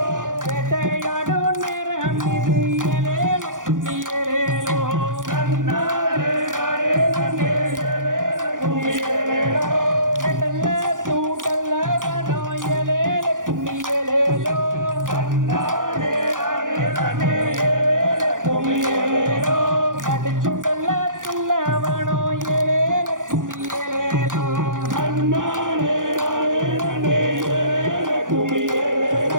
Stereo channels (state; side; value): late; left; 0.88 ms